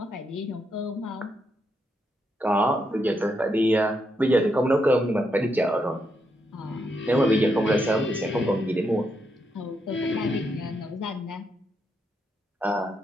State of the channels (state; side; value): normal; both; correlation 0.80